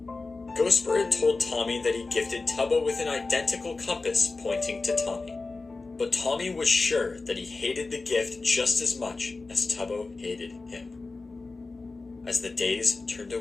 Ghostbird had told Tommy that he gifted Tubbo with an identical compass pointing to Tommy. But Tommy was sure that he hated the gift just as much as Tubbo hated him. As the days turned to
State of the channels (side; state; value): right; quieter; 3.7 dB